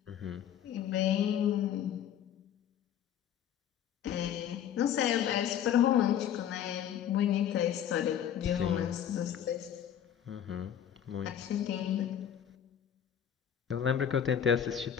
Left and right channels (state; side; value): quieter; right; 9.7 dB